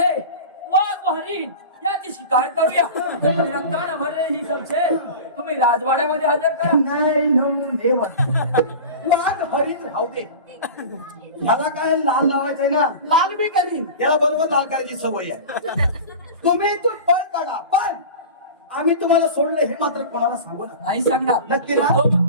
वाघ हरिण याची शिकार करूया रक्तानं भरले ही संशय तुम्ही राजवाड्यामध्ये हजर करा नाही देव वाघ हरिण राहू दे ह्याला काय लाल लावायचंय ना लाल बी करीन याला बरोबर लाल करायची सवय आहे तुम्ही तो पळ काढा पण आम्ही तुम्हाला सोडलं हे मात्र कोणाला सांगू नका नाही सांगणार नक्की ना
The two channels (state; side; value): inverted; both; correlation -0.33